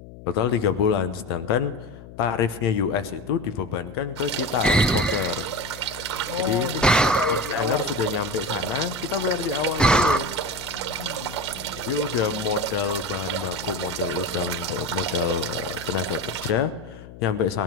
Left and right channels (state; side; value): noise; left; hum, 16 dB below the sound